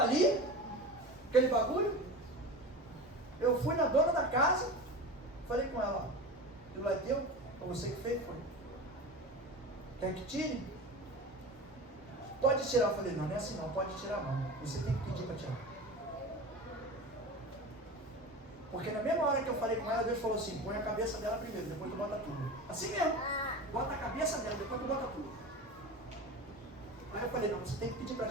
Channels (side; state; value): both; normal; correlation 0.30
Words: ali, aquele bagulho. Eu fui na dona da casa, falei com ela, aquilo é teu? Foi você que fez? Foi. Quer que tire? Pode tirar. Eu falei, não é assim não, pode tirar não. Você tem que pedir para tirar. Porque na mesma hora que eu falei com ela, Deus falou assim, põe a cabeça dela primeiro, depois tu bota tudo. Assim mesmo. Bota a cabeça dela, depois tu bota tudo. Aí eu falei, não, você tem que pedir para